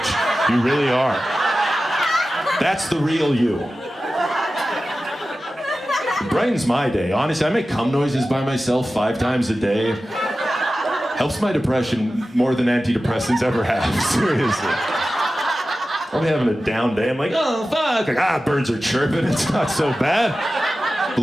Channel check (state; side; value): normal; both; correlation 0.94